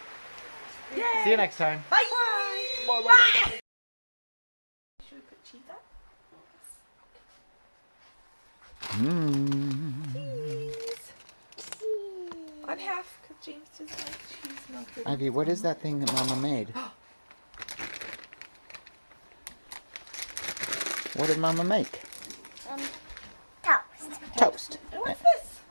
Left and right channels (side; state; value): both; inverted; correlation -1.00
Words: Yay. See you next time. Bye. Bye. Bye. Should we put cheese up? Cheese. On half, because James doesn't like cheese melted. Ivy, what is that thing that Mama made? What did Mama make? Toast. Toast. And what's this?